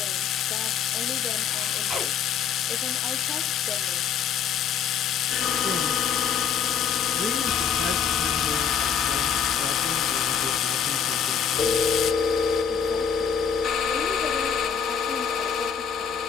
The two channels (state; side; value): quieter; right; 7.4 dB